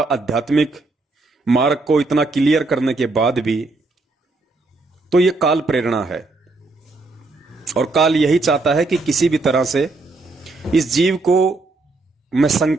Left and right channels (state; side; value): quieter; left; 3.4 dB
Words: आध्यात्मिक मार्ग को इतना क्लियर करने के बाद भी, तो ये काल प्रेरणा है। और काल यही चाहता है कि किसी भी तरह से इस जीव को मैं